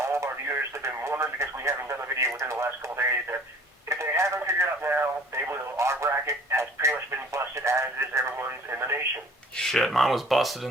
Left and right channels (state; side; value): normal; both; correlation 0.51